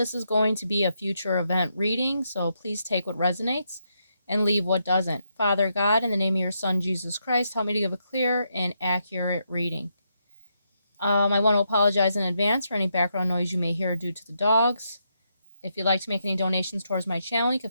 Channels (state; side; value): inverted; both; correlation -0.80